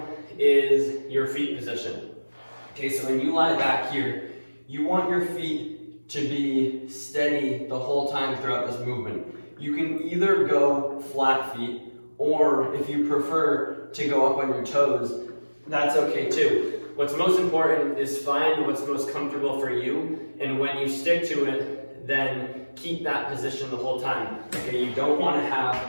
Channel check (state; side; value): inverted; both; correlation -1.00